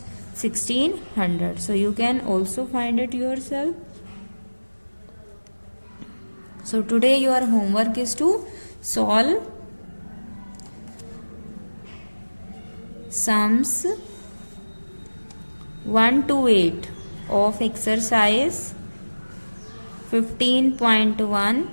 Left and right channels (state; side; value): inverted; both; correlation -1.00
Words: 1600। So you can also find it yourself. So today your homework is to solve sums 1 to 8 of exercise 15.1